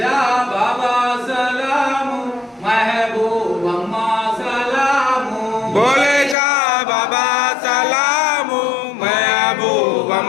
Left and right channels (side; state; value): right; drops out; at 6.4 s